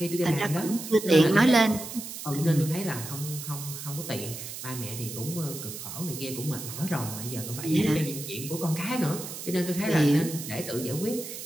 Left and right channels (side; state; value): right; noise; hiss, 9 dB below the sound